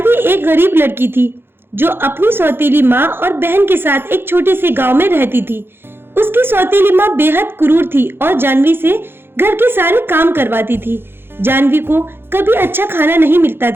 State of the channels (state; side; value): late; left; 0.11 ms